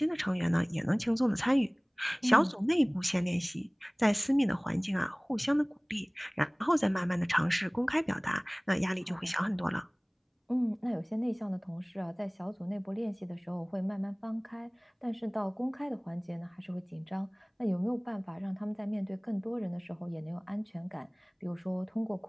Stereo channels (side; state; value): both; identical; correlation 1.00